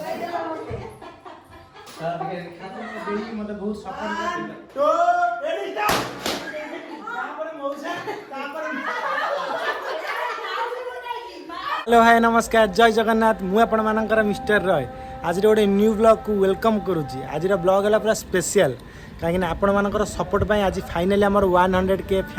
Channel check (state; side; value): identical; both; correlation 1.00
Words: मते बहुत सपोर्ट करथिला तो रेडी स्टार्ट तापर मौसा तापर हेलो हाय नमस्कार जय जगन्नाथ मु आपण मानकर मिस्टर रॉय आज गोटे न्यू ब्लॉग को वेलकम करुच्ची आज ब्लॉग है पूरा स्पेशल कहीं आपण मानकर सपोर्ट पाई आज फाइनली आमर 100K